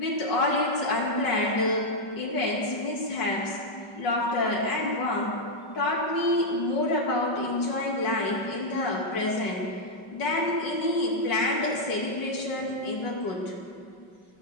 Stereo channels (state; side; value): late; right; 5.3 ms